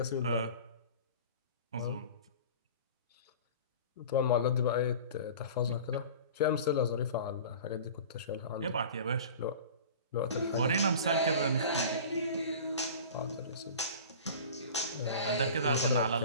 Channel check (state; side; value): inverted; both; correlation -0.39